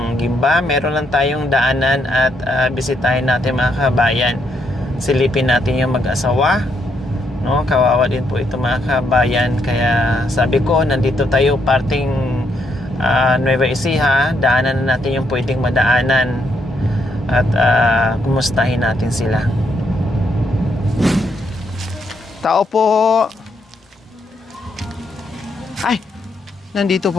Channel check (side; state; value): both; normal; correlation 0.76